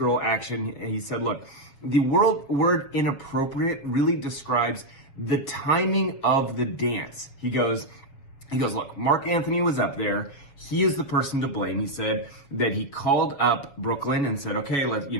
action. And he said, look, the word inappropriate really describes the timing of the dance. He goes, look, Mark Anthony was up there. He is the person to blame. He said that he called up Brooklyn and said, okay, let's,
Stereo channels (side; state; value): right; late; 7.2 ms